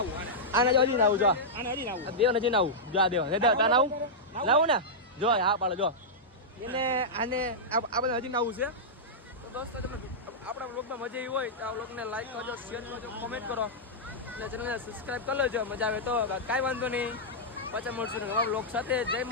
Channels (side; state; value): both; normal; correlation -0.10